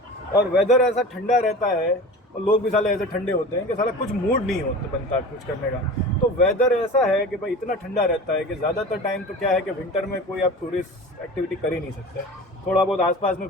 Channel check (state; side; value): normal; both; correlation 0.35